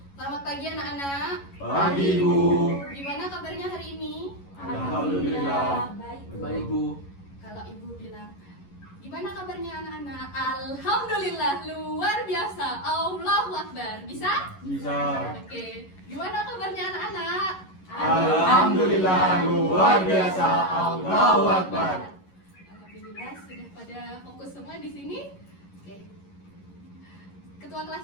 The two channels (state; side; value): late; right; 11 ms